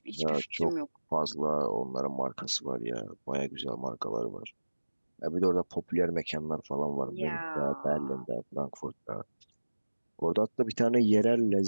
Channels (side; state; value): both; inverted; correlation -1.00